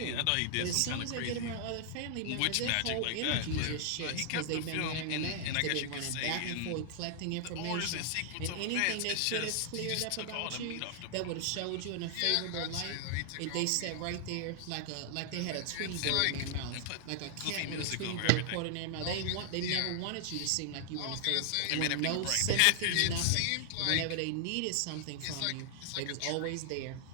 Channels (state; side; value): different; both; correlation 0.00